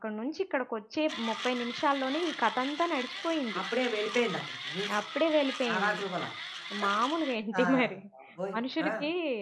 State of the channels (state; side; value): identical; both; correlation 1.00